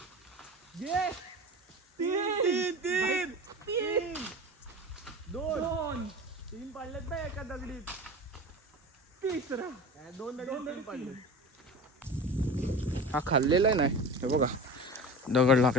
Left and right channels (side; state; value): both; normal; correlation 0.33